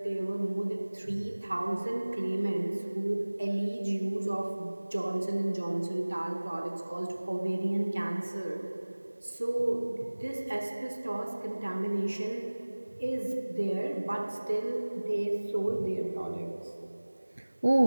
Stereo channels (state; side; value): inverted; both; correlation -1.00